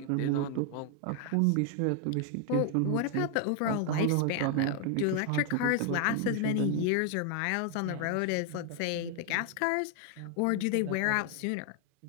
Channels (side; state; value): both; different; correlation 0.00